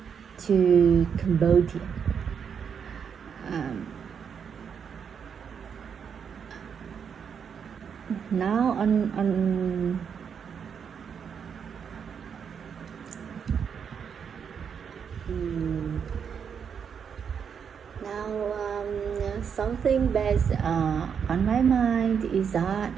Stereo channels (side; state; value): left; quieter; 7.1 dB